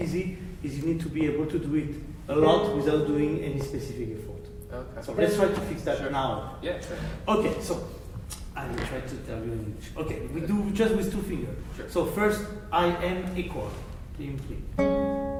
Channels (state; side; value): identical; both; correlation 1.00